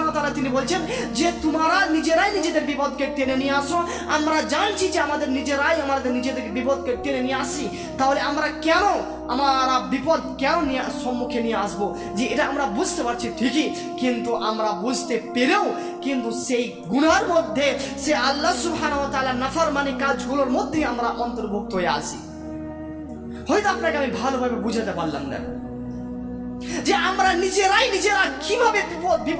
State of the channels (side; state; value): both; identical; correlation 1.00